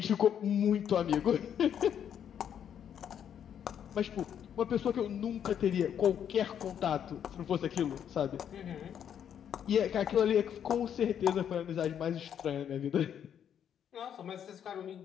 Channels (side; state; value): right; quieter; 8.9 dB